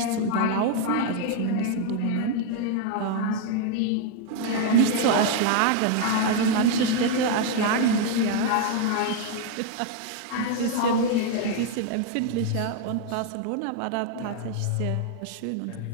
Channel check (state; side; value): different; both; correlation 0.00